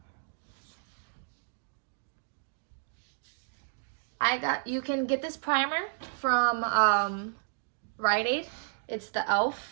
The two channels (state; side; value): silent; left; digital silence